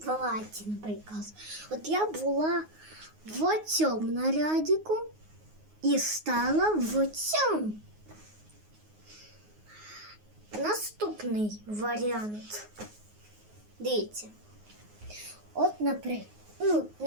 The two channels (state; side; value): late; left; 9.5 ms